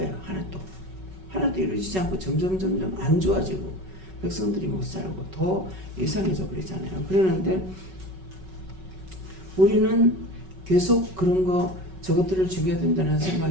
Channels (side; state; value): left; late; 5.3 ms